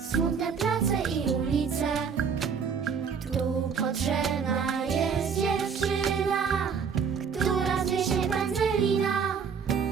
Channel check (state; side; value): quieter; left; 6.3 dB